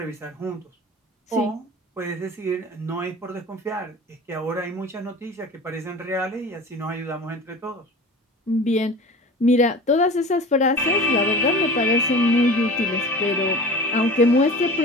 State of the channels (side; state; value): both; normal; correlation 0.37